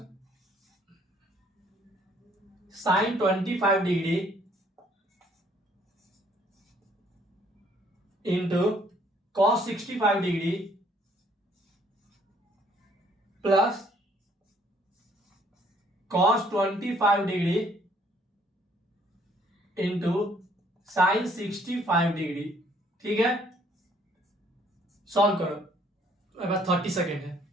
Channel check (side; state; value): both; normal; correlation 0.63